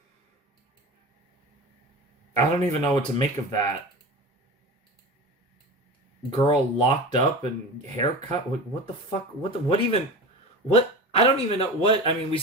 I don't even know what to make of that. Girl locked up and haircut. What the fuck? What? I don't even know what. I mean, we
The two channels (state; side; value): normal; both; correlation 0.30